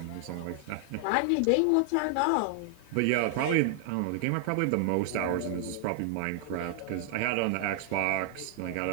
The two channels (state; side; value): different; both; correlation 0.00